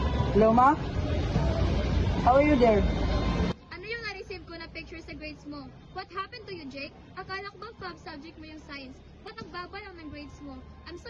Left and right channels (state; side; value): identical; both; correlation 1.00